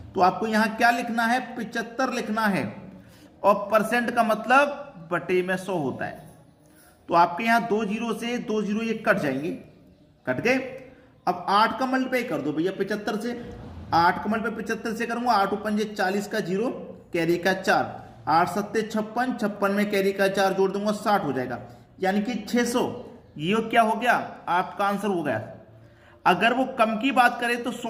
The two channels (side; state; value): both; identical; correlation 1.00